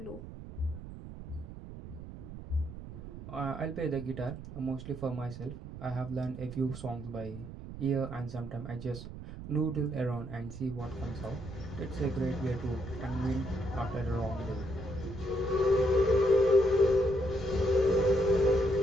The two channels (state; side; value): noise; right; rumble, 12 dB below the sound